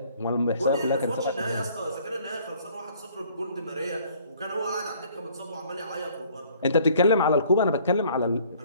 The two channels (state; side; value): inverted; both; correlation -0.58